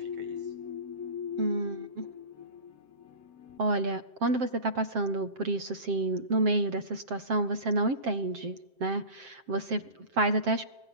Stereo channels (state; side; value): late; left; 7.6 ms